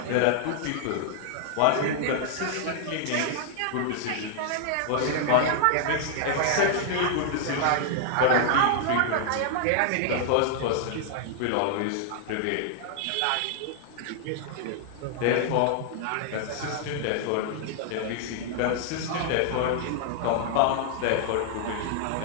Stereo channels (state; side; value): different; both; correlation -0.01